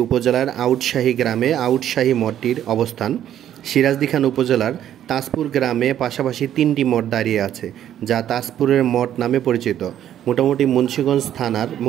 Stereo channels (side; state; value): left; quieter; 10.9 dB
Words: উপজেলার আউটশাহী গ্রামে আউটশাহী মঠটির অবস্থান। সিরাজদি খান উপজেলার তাজপুর গ্রামে পাশাপাশি 3টি মঠ দাঁড়িয়ে আছে, যা তাজপুরের মঠ নামে পরিচিত। মোটামুটি